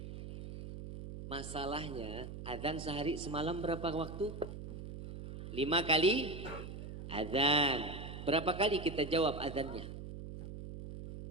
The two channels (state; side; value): noise; right; hum, 9 dB below the sound